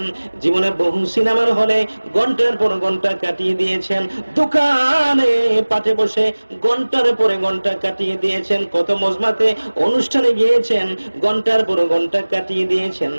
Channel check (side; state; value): both; inverted; correlation -1.00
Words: জীবনে বহু সিনেমার হলে ঘন্টার পর ঘন্টা কাটিয়ে দিয়েছেন, দোকানে পাটে বসে ঘন্টার পরে ঘন্টা কাটিয়ে দিয়েছেন, কত মজমাতে অনুষ্ঠানে গিয়েছেন, ঘন্টার পর ঘন্টা কাটিয়ে দিয়েছেন।